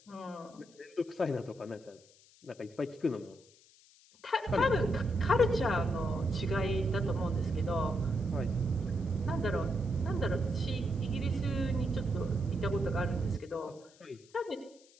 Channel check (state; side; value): noise; left; hiss, 27 dB below the sound